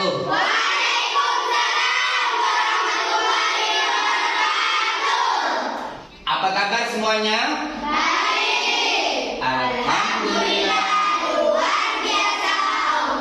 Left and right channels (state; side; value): identical; both; correlation 1.00